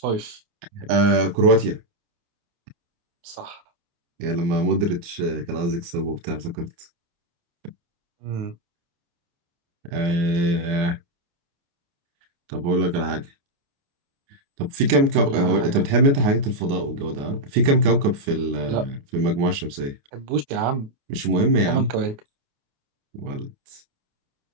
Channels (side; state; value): left; late; 29 ms